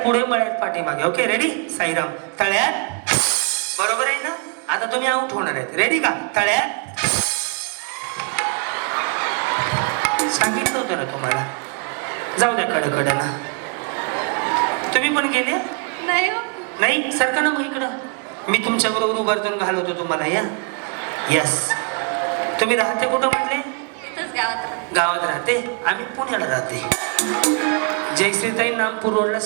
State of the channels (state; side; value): quieter; left; 37.8 dB